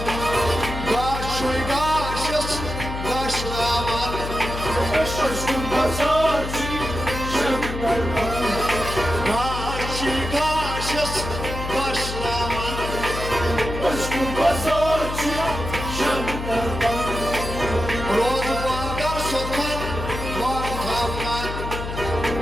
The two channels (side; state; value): left; noise; hum, 6 dB below the sound